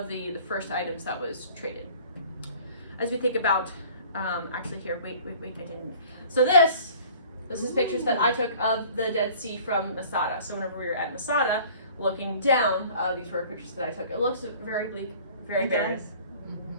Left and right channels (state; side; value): inverted; both; correlation -0.49